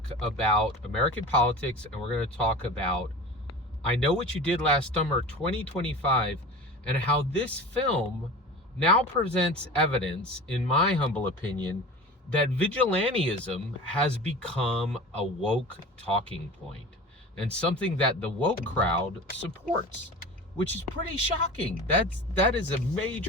about American politics, and we're going to talk about I Know What You Did Last Summer 2025, and how this film now presents evidence, in my humble opinion, that vigilantism has become a woke talking point, and something that the woke crowd supports, which is pretty shocking. That is a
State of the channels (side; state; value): both; normal; correlation 0.35